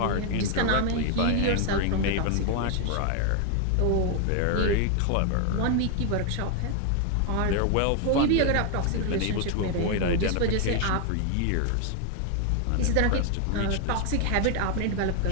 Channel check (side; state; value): both; different; correlation 0.00